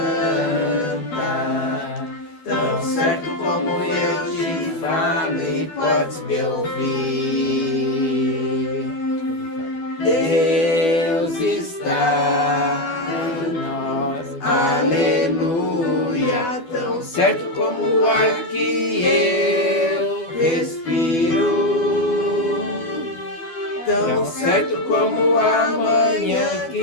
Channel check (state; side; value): late; right; 12 ms